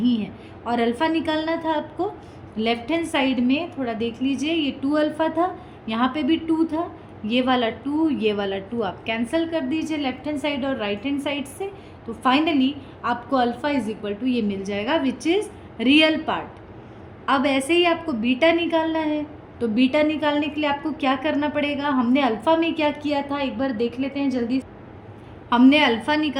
है। और अल्फ़ा निकालना था आपको, लेफ्ट हैंड साइड में थोड़ा देख लीजिए, ये 2 अल्फ़ा था, यहाँ पे भी 2 था, ये वाला 2 ये वाला 2 आप कैंसिल कर दीजिए लेफ्ट हैंड साइड और राइट हैंड साइड से। तो फाइनली आपको अल्फ़ा इज इक्वल टू ये मिल जाएगा विच इज़ रियल पार्ट। अब ऐसे ही आपको बीटा निकालना है, तो बीटा निकालने के लिए आपको क्या करना पड़ेगा, हमने अल्फ़ा में क्या किया था एक बार देख लेते हैं जल्दी। हमने अल्फ़ा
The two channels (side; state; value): both; identical; correlation 1.00